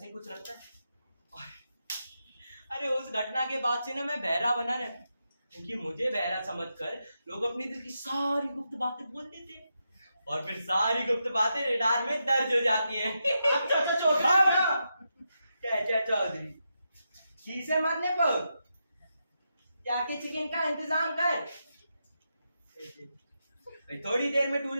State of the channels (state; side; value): inverted; both; correlation -0.86